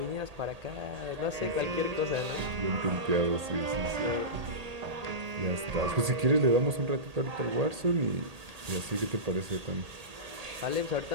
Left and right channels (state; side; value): late; left; 1.8 ms